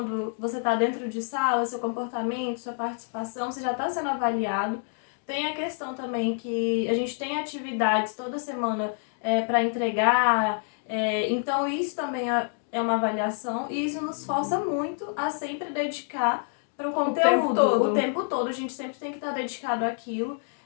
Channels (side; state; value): right; silent; 60 dB below the other